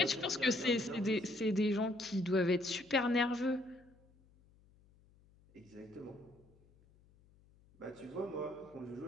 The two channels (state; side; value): noise; left; hum, 29 dB below the sound